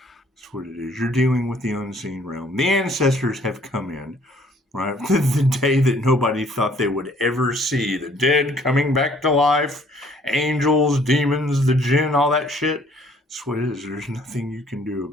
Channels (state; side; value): normal; both; correlation 0.60